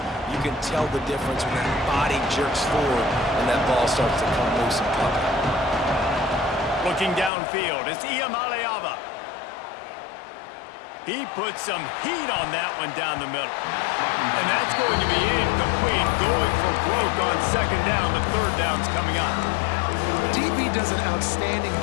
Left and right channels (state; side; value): drops out; right; at 7.3 s